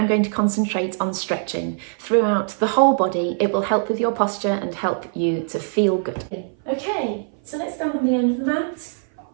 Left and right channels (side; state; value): left; silent; 57 dB below the other